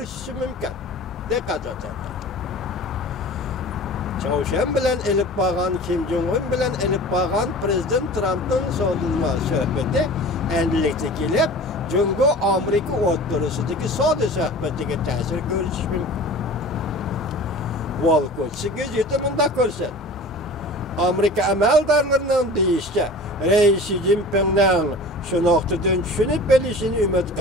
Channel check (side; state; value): both; normal; correlation 0.39